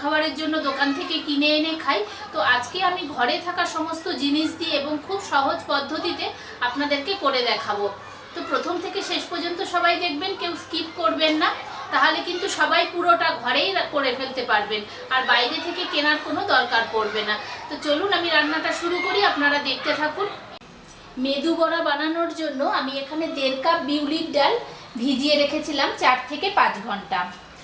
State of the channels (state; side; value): identical; both; correlation 1.00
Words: জন্য দোকান থেকে কিনে এনে খাই। তো আজকে আমি ঘরে থাকা সমস্ত জিনিস দিয়ে এবং খুব সহজ পদ্ধতিতে আপনাদেরকে করে দেখাবো। তো প্রথম থেকে শেষ পর্যন্ত সবাই দেখবেন, কেউ স্কিপ করবেন না, তাহলে কিন্তু সবাই পুরোটা ঘরেই করে ফেলতে পারবেন, আর বাইরে থেকে কেনার কোনো দরকার পড়বে না। তো চলুন আমি রান্নাটা শুরু করি, আপনারা দেখতে থাকুন। মেদু বড়া বানানোর জন্য আমি এখানে 1.5 কাপ বিউলির ডাল ভিজিয়ে রেখেছিলাম 4 থেকে 5 ঘন্টা।